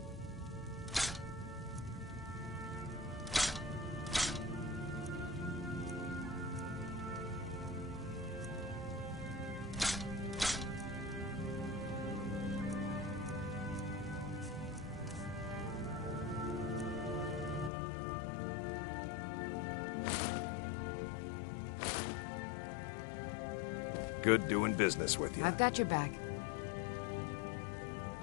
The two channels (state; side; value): drops out; right; at 17.7 s